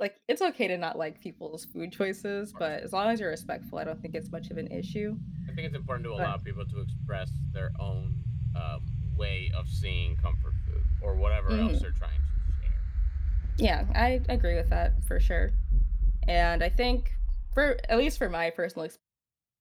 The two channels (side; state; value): both; identical; correlation 1.00